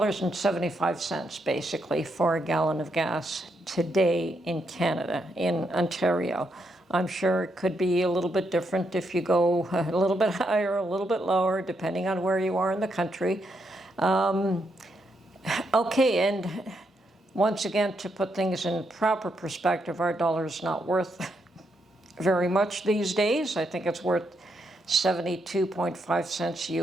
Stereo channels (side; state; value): both; normal; correlation 0.79